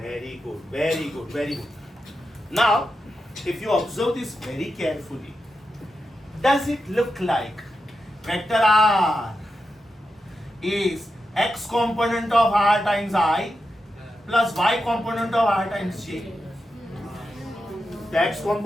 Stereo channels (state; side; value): normal; both; correlation 0.88